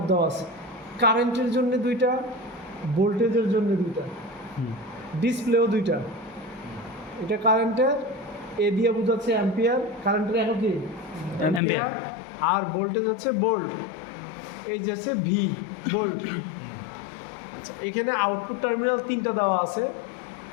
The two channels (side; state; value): right; drops out; at 11.6 s